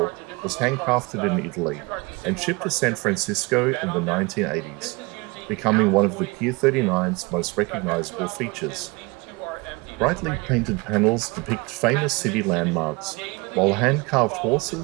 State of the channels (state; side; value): quieter; left; 26.4 dB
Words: was handcrafted in Italy and shipped to San Francisco in the 1980s, becoming one of the Pier 39's most recognizable features. Brightly painted panels depict famous city landmarks, while hand-carved